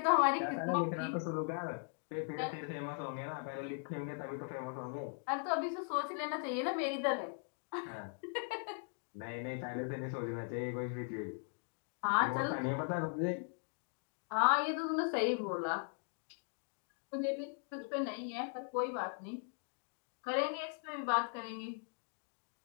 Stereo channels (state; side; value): silent; right; 52 dB below the other